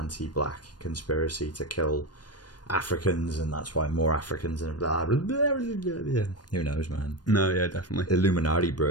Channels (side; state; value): right; late; 0.69 ms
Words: conspiracy to kill Africans, and that's why more Africans and blah, blah, blah, blah, blah. Who knows, man? No, yeah, definitely. Illuminati,